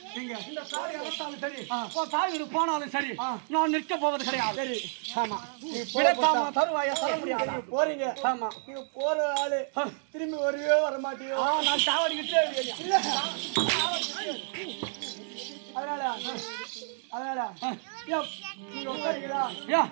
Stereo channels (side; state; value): left; silent; digital silence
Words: இந்த சாரி அறுத்தாலும் சரி, தாய் போனாலும் சரி, நான் நிற்க போவது கிடையாது. சரி, ஆமா. தருவாயா தர முடியாது. போறீங்க, ஆமா. நீங்க போற ஆளு திரும்பி வரவே வர மாட்டீங்க. நான் சாவடிக்கிட்டே அதனால நீங்க உட்காருங்களா?